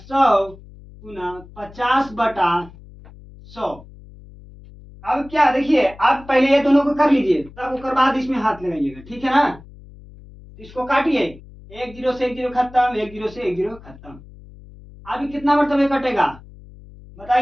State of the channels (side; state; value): left; noise; hum, 20 dB below the sound